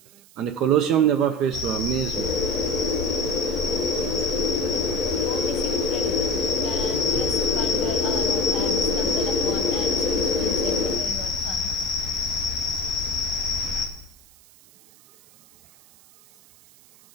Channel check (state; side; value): noise; right; hiss, 26 dB below the sound